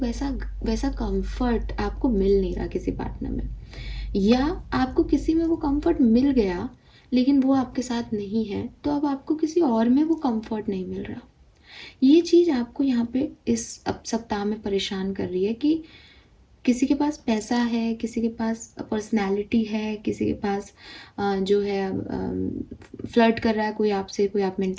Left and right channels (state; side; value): identical; both; correlation 1.00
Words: वैसा कंफर्ट आपको मिल नहीं रहा किसी पार्टनर में, या आपको किसी में वो कंफर्ट मिल गया लेकिन वो आपके साथ नहीं है, तो अब आपको किसी और में वो कंफर्ट नहीं मिल रहा। ये चीज़ आपको यहाँ पे इस अब सप्ताह में परेशान कर रही है कि किसी के पास पैसा है, किसी के पास पर्सनैलिटी है, किसी के पास जो है फ्लर्ट कर रहा है कोई आपसे, कोई आप में